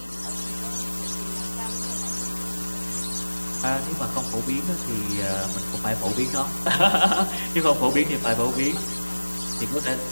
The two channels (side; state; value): both; inverted; correlation -1.00